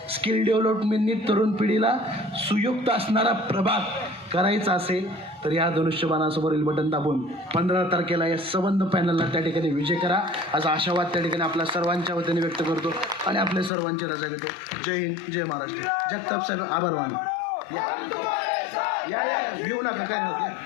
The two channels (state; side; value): drops out; right; at 13.7 s